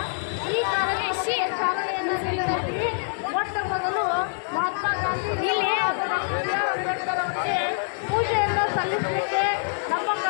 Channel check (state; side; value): silent; right; digital silence